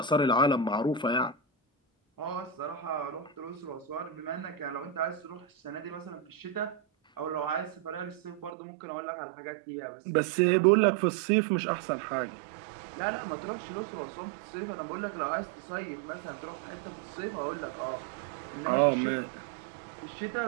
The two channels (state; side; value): drops out; left; at 8.5 s